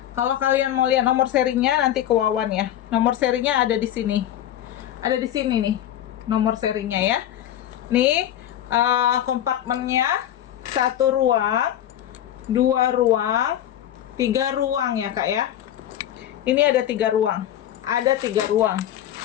Kalau kalian mau lihat nomor serinya nanti ke Wawan ya. Nomor serinya ada di sini. Ada di sini nih nomor serinya ya. Nih kompartemennya 1 ruang, 2 ruang, 3 ruang ya Kak ya. Ini ada 3 ruang. Ada 3 ruang.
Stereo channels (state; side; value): quieter; right; 11.6 dB